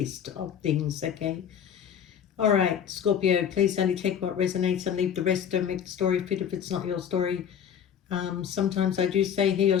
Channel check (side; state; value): right; quieter; 8.5 dB